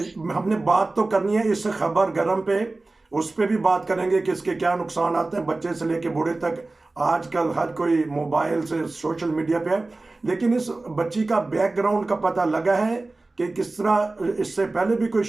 हमने बात तो करनी है इस खबर गरम पे, उस पे भी बात करेंगे कि इसके क्या नुकसान आते हैं, बच्चे से लेके बूढ़े तक। आजकल हर कोई मोबाइल से, सोशल मीडिया पे है। लेकिन इस बच्ची का बैकग्राउंड का पता लगा है कि किस तरह इससे पहले भी कोई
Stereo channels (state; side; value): quieter; left; 3.2 dB